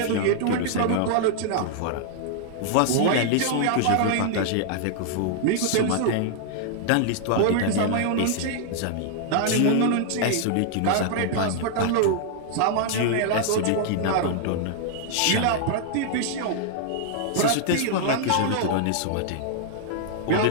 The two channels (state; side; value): different; both; correlation -0.01